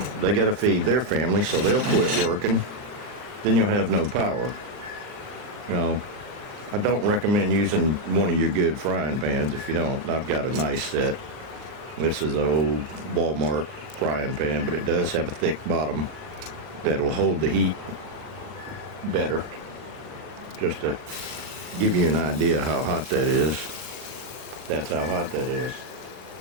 They got to feed their family, so they'll quit working. Then you'll have no power. You know, I don't recommend using one of your good frying pans if you don't. I've got a nice set. This is an old Walmart frying pan, but it does have a thick bottom that'll hold the heat better. Just to give you an idea how hot that is. That's how hot that is.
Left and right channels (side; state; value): left; late; 39 ms